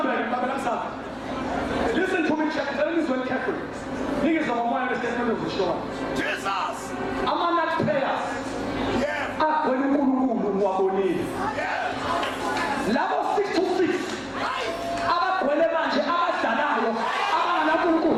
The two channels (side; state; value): both; identical; correlation 1.00